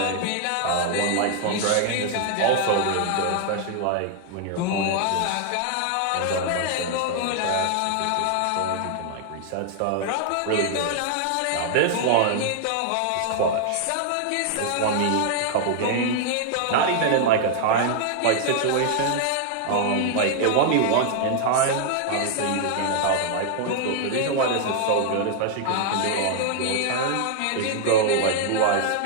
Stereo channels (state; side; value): different; both; correlation 0.00